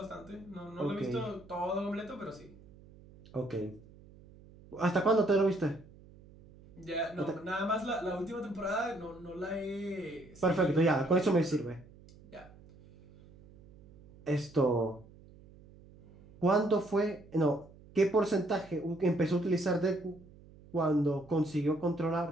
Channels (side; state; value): right; noise; hum, 23 dB below the sound